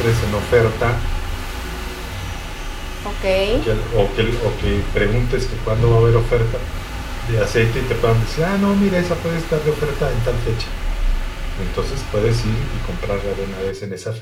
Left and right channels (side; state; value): both; identical; correlation 1.00